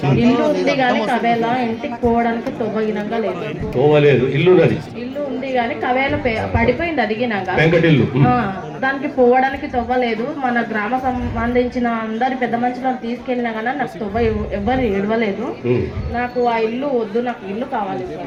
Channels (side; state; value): both; identical; correlation 1.00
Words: ఇల్లు ఉంది కానీ కవేళ ఇంటికి పోవడానికి తొవ్వగినంగా లేదు. పోవలేదు. ఇల్లు ఉంది కానీ కవేళ పడిపోయింది అదిగినాక. వెంకటిల్లు. దానికి పోవడానికి తొవ్వలేదు. మన గ్రామ సంబంధించిన అందరి పెద్ద మనుషులను తీసుకెళ్ళినా కానీ నాకు తొవ్వ ఎవరు ఇడవలేదు. నాకు ఆ ఇల్లు వద్దు, నాకు ఇల్లు కావాలి